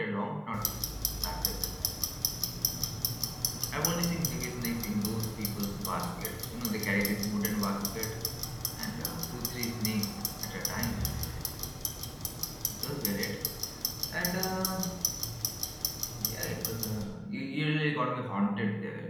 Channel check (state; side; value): identical; both; correlation 1.00